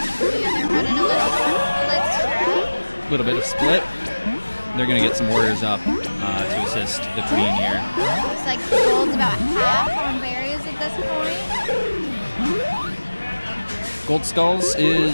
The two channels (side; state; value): both; inverted; correlation -1.00